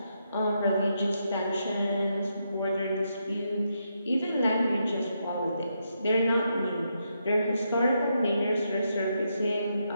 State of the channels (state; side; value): inverted; both; correlation -0.81